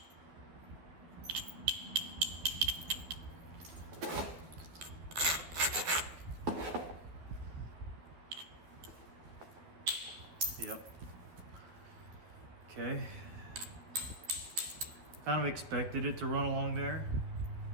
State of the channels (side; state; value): left; late; 12 ms